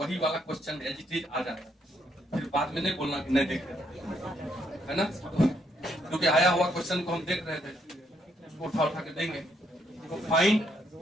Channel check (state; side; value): normal; both; correlation 0.74